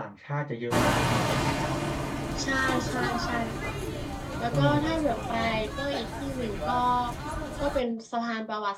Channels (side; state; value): both; identical; correlation 1.00